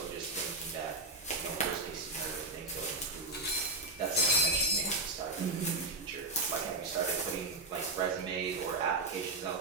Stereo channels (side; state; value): left; quieter; 3.0 dB